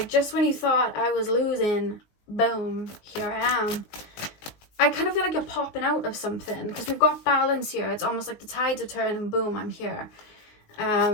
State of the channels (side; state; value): right; late; 19 ms